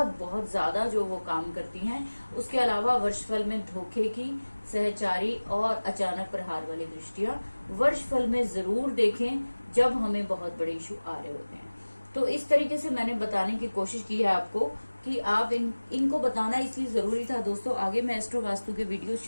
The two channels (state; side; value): inverted; both; correlation -1.00